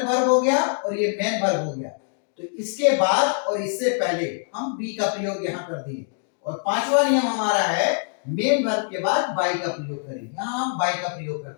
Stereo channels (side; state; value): right; silent; digital silence